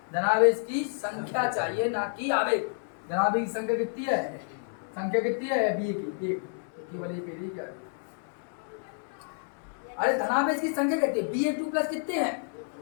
धनावेश की संख्या चाहिए ना कि आवेश। धनावेश की संख्या कितनी है, संख्या कितनी है बी की, एक, केवल एक है क्या। अरे धनावेश की संख्या कितनी है, Ba2 प्लस कितने हैं,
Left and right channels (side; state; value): right; silent; 58 dB below the other